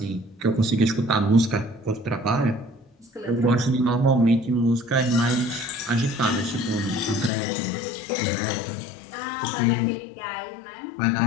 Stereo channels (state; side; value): drops out; right; at 7.3 s